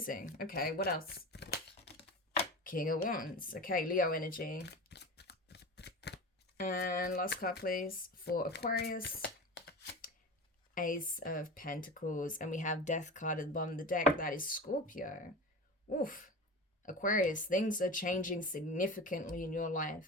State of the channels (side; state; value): both; normal; correlation 0.30